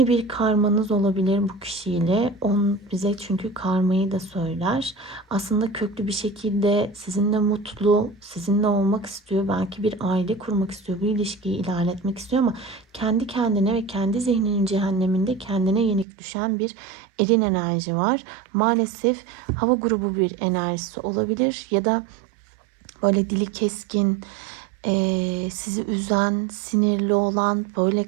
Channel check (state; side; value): drops out; left; at 16.1 s